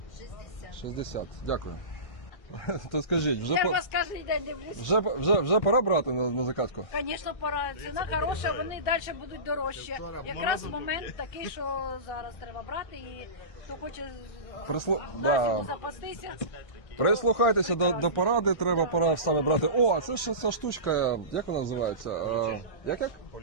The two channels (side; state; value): right; late; 1.6 ms